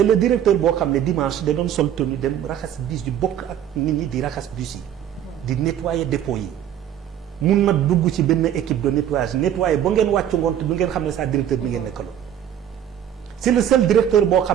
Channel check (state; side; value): quieter; left; 10.1 dB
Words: le directeur boo xam ne dimanche da doon sol tenue dem raxas bus di bokk ak nit ñi di raxas bus yi di nettoyer dépôt yi mun na dugg ci benn équipe de nettoyer ba ngeen wàccu ngoon te du ngeen xam ne sa directeur bi ngeen nekkaloo c'est le seul directeur boo